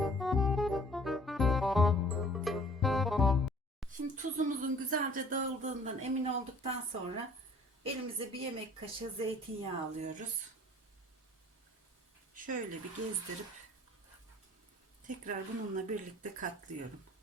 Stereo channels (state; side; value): normal; both; correlation 0.53